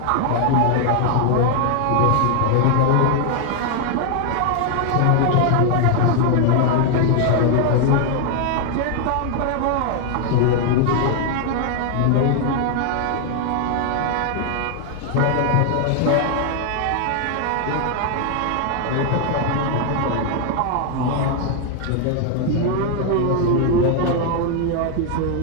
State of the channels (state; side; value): different; both; correlation 0.00